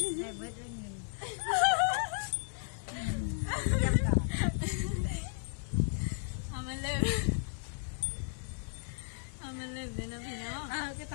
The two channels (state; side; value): silent; right; digital silence